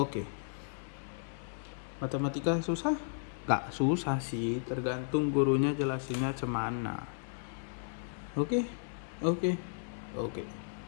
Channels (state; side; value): silent; right; 55 dB below the other